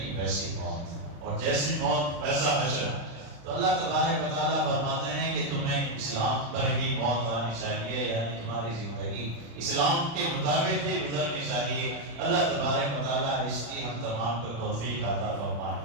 ویسی موت، اور جیسی موت ویسا حشر۔ تو اللہ تبارک و تعالیٰ فرماتے ہیں کہ تمہیں اسلام پر ہی موت آنی چاہیے، یعنی تمہاری زندگی اسلام کے مطابق ہی گزرنی چاہیے۔ اللہ تبارک و تعالیٰ اس کی ہم تمام کو توفیق عطا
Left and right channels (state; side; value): late; left; 35 ms